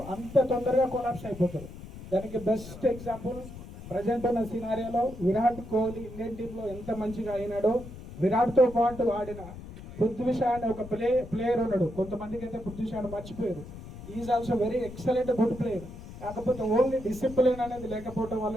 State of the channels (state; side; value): noise; left; rumble, 14 dB below the sound